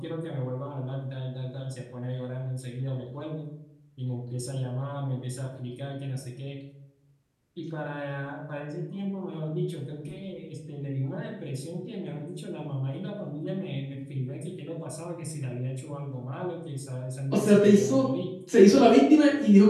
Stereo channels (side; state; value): both; identical; correlation 1.00